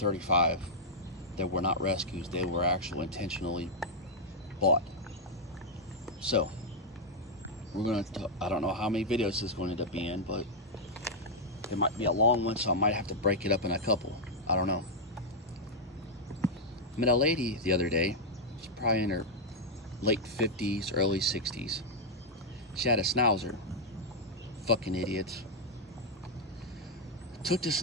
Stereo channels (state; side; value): normal; both; correlation -0.04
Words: that were not rescues. They were actually intentionally bought. So, I don't know how many videos this is going to end up being, but it might be a long one, so I might have to break it up in a couple. I don't know. I met a lady the other day. She's probably in her late 50s, early 60s. She had a Schnauzer. Fucking idiots. Took the